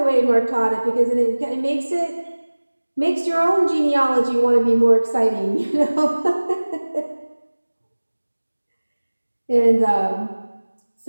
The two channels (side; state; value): both; inverted; correlation -1.00